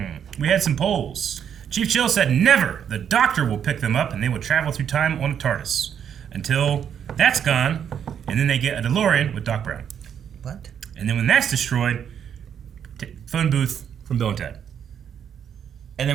We had some polls. Chief Chill said never. The Doctor will pick them up and they will travel through time on a TARDIS. Until that's gone, and then they get a DeLorean with Doc Brown. What? And then when that's destroyed, phone booth from Bill and Ted. And then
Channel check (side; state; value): left; quieter; 8.5 dB